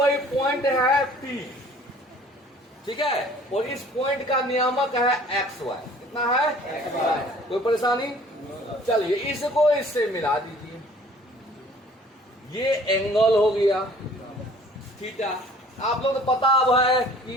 पॉइंट है P, ठीक है, और इस पॉइंट का नियामक है XY। कितना है? कोई परेशानी? चलिए इसको इससे मिला दीजिए। ये एंगल हो गया थीटा। आप लोग को पता अब है कि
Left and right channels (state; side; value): normal; both; correlation 0.52